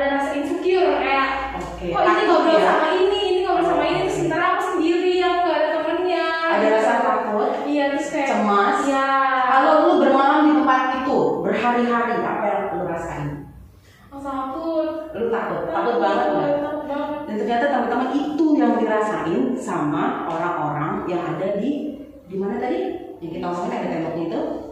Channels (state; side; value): identical; both; correlation 1.00